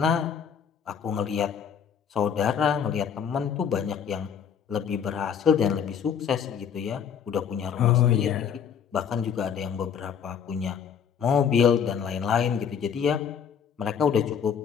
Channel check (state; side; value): quieter; right; 7.7 dB